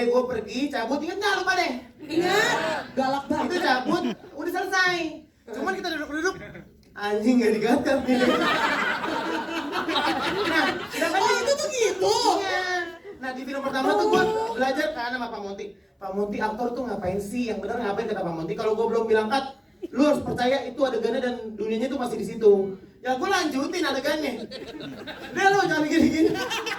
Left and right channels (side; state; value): both; identical; correlation 1.00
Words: gue pergi, cabut, inget gak lupa deh? Ingat, galak banget. Itu cabut, udah selesai. Cuman kita duduk-duduk, anjing gak digagal nih. Nah, oh itu tuh gitu? Iya. Nah di film pertama tuh gue belajar kan sama Pak Monty. Pak Monty aktor tuh ngapain sih? Yang bener ngapain kata Pak Monty? Kalau gue belum bilang cut, lu harus percaya itu adegannya dan dunianya tuh masih di situ. Ya gue lanjutin adegannya. Udah lu jangan gini-gini.